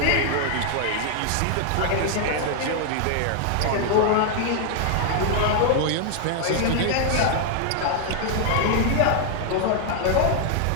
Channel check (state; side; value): different; both; correlation 0.00